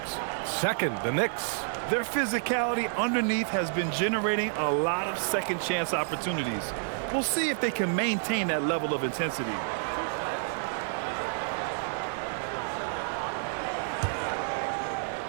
Second, the Knicks. Their physicality underneath has been generating a lot of second chance opportunities. We'll see if they can maintain that level of intensity.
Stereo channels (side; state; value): left; silent; digital silence